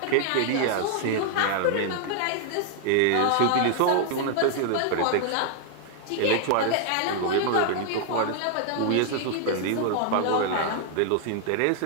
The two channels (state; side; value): different; both; correlation 0.00